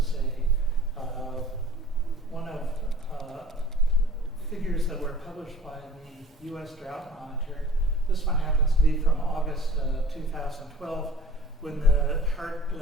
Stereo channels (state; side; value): normal; both; correlation 0.47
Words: one of figures that were published by the U.S. Drought Monitor. This one happens to be from August 2012, when the